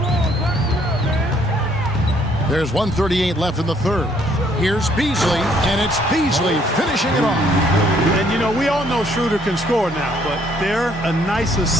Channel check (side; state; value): both; normal; correlation 0.65